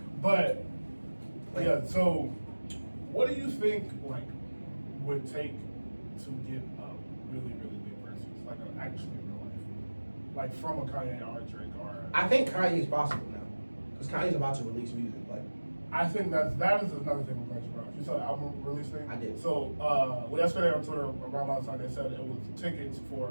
But yeah, so what do you think like would take to get a really, really big versus like an actually real life, like from a Kanye or a Drake or? I think Kanye's possible now, because Kanye's about to release music. Like, I think that is another thing with Kanye Brown. You saw the album release thing? I did. So yesterday on Twitter around last night they said it was tickets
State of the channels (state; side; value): inverted; both; correlation -1.00